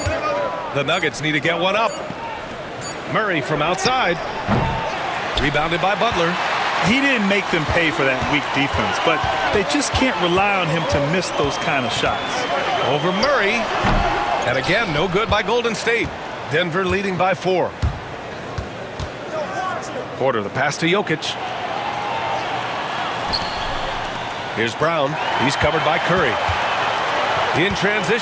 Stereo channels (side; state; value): both; identical; correlation 1.00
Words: The Nuggets need to get one up. Murray from outside. Rebounded by Butler. He didn't make them pay for that weak defense, but they just can't rely on him to miss those kind of shots. Over Murray. And again, no good by Golden State. Denver leading by 4. Porter, the pass to Jokic. Here's Brown. He's covered by Curry. In